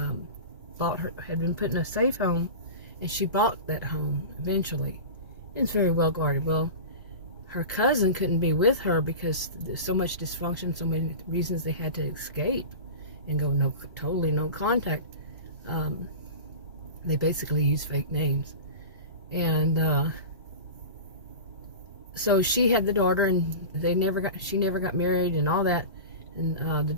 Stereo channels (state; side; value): inverted; both; correlation -0.30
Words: had been put in a safe home, and she bought that home eventually. It's very well guarded. Well, her cousin couldn't be with her because there's so much dysfunction, so many reasons they had to escape and go totally no contact. They basically used fake names. And so she had the daughter, and she never got married and all that. And the